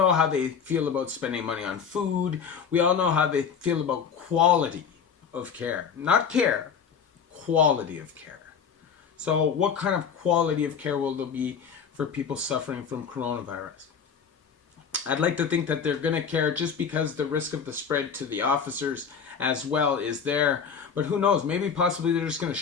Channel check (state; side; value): quieter; right; 6.7 dB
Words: how they feel about spending money on food. We all know how they feel about quality of care. Not care, quality of care. So what kind of quality of care will there be for people suffering from coronavirus? I'd like to think that they're going to care just because the risk of the spread to the officers as well is there. But who knows? Maybe possibly they're just going to